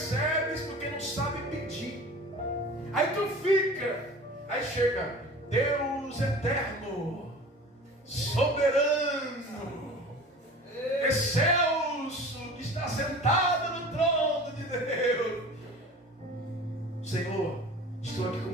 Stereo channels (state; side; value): normal; both; correlation 0.40